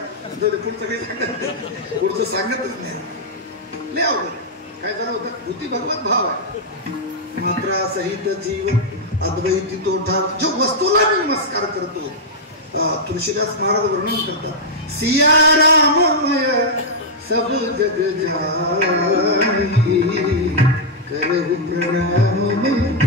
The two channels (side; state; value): both; normal; correlation -0.05